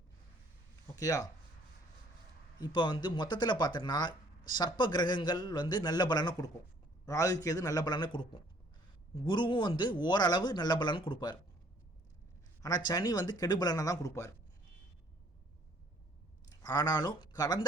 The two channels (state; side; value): normal; both; correlation 0.59